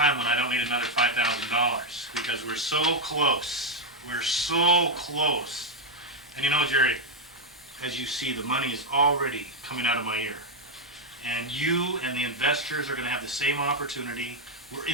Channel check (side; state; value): both; normal; correlation 0.01